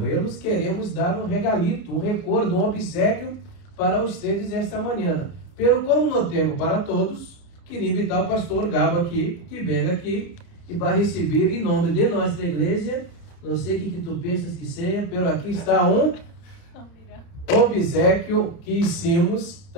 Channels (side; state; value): right; late; 30 ms